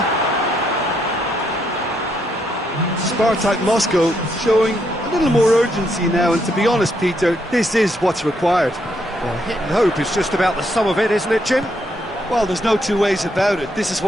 SPARTAK Moscow showing a little more urgency now, and to be honest, Peter, this is what's required. Well, hit and hope is just about the sum of it, isn't it, Jim? Well, there's no two ways about it. This is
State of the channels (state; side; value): normal; both; correlation 0.75